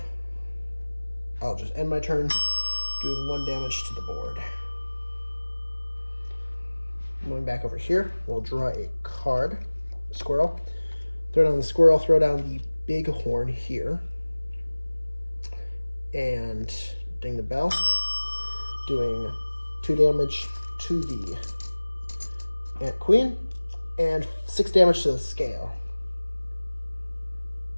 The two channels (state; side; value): inverted; both; correlation -1.00